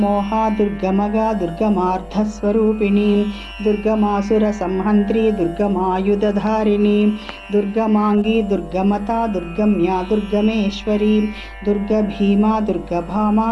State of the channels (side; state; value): both; identical; correlation 1.00